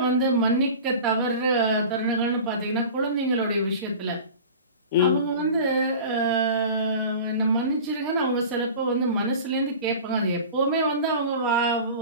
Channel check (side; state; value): both; inverted; correlation -0.37